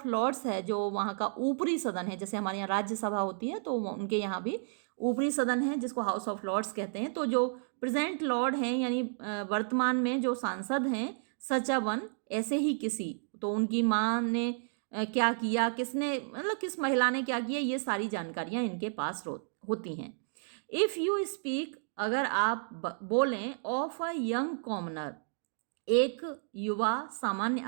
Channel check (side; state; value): left; silent; digital silence